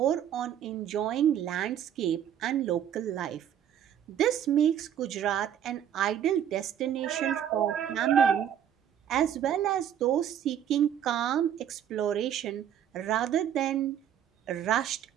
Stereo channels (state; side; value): quieter; left; 9.8 dB